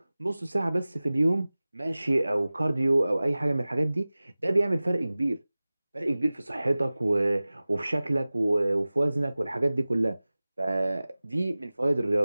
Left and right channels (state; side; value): inverted; both; correlation -0.98